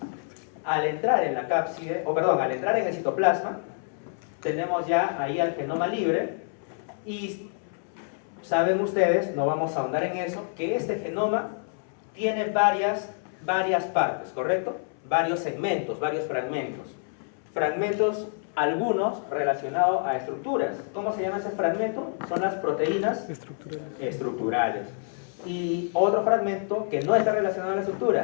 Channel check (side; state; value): right; silent; 60 dB below the other